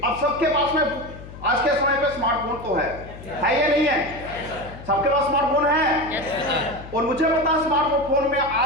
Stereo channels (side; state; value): left; noise; hum, 15 dB below the sound